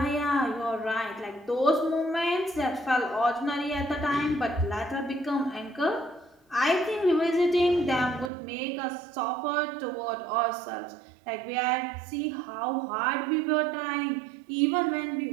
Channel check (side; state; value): left; drops out; at 8.3 s